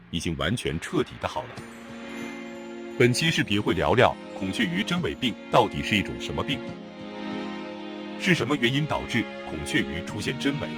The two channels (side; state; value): both; identical; correlation 1.00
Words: 已经完全彻底的好了。本期视频会聊聊孔雀鱼真尾病到底是一种什么病，是什么原因导致孔雀鱼出现真尾，